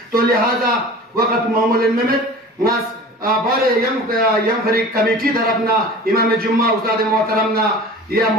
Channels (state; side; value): normal; both; correlation 0.40